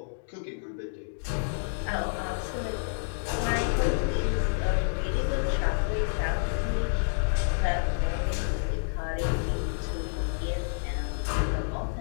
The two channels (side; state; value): right; silent; digital silence